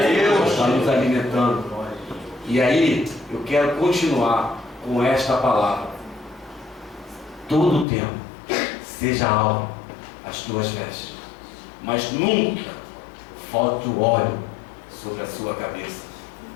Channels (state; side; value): drops out; right; at 7.9 s